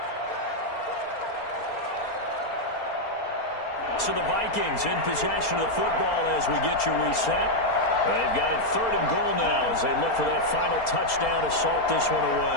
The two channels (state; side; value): late; right; 4.3 ms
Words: So the Vikings in possession of the football as we get you reset. They've got it 3rd and goal now as they look for that final touchdown to salt this one